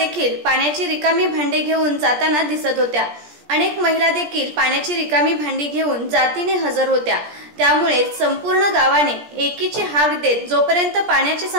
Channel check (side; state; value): left; late; 17 ms